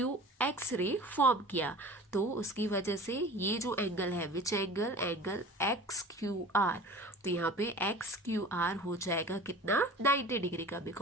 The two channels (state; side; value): normal; both; correlation 0.40